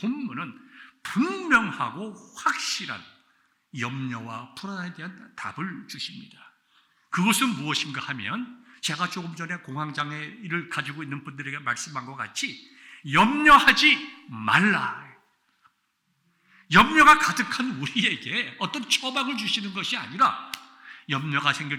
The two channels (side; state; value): both; identical; correlation 1.00